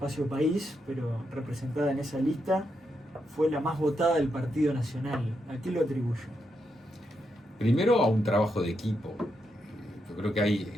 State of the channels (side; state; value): both; normal; correlation 0.82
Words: país, pero representada en esa lista, fue la más votada del Partido Nacional. ¿A qué lo atribuye? Primero a un trabajo de equipo. Yo creo